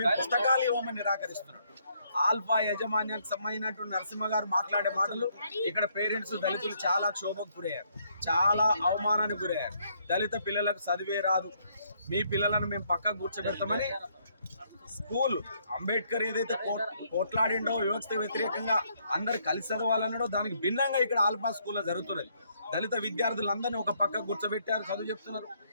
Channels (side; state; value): both; inverted; correlation -0.70